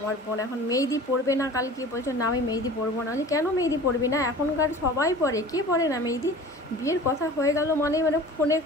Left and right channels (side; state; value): both; normal; correlation 0.41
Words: বোন এখন মেহেদি পরবে না, কালকে বলছো না আমি মেহেদি পরবো না। কেন মেহেদি পরবি না? এখনকার সবাই পরে, কে পরে না মেহেদি? বিয়ের কথা হয়ে গেল মানে ফোনে